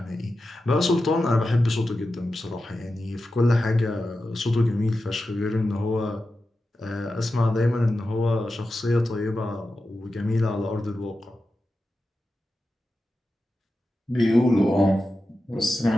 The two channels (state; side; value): normal; both; correlation 0.91